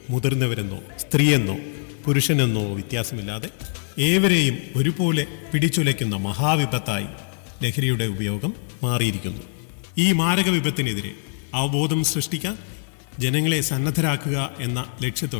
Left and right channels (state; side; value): silent; right; digital silence